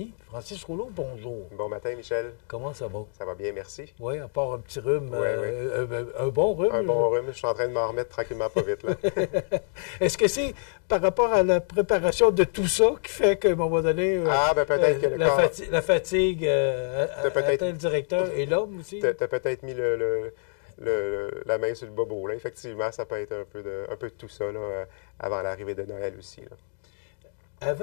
Francis Rouleau. Bonjour. Bon matin, Michel. Comment ça va? Ça va bien, merci. Oui, à part un petit rhume, Oui. un bon rhume. Un bon rhume, je suis en train de m'en remettre tranquillement pas vite, là. Est-ce que c'est par rapport à la préparation de tout ça qui fait qu'à un moment donné, peut-être que la fatigue atteint le directeur et l'homme aussi? Tu as peut-être mis la main sur le bobo, là. Effectivement, ça peut être un peu de tout ça, là, avant l'arrivée de Noël aussi, là.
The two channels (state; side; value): silent; right; 56 dB below the other